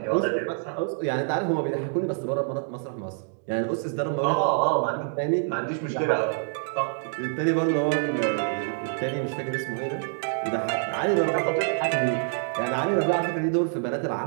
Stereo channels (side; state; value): left; silent; 61 dB below the other